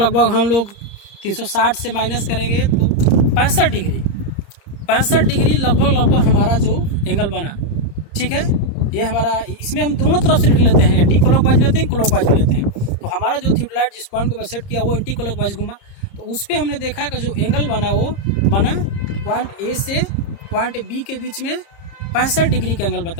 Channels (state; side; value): late; right; 30 ms